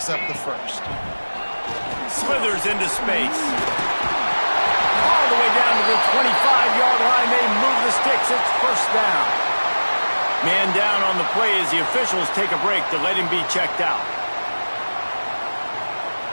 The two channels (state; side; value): inverted; both; correlation -1.00